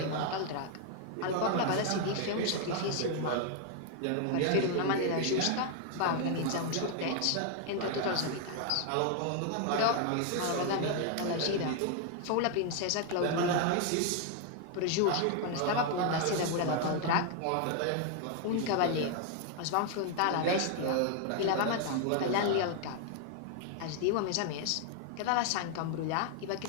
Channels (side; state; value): both; different; correlation 0.00